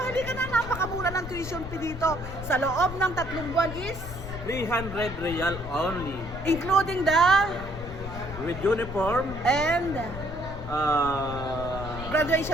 Halika na, napakamura ng tuition fee dito. Sa loob ng 3 buwan is 300 real only. including the With uniform, and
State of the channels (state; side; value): noise; left; rumble, 10 dB below the sound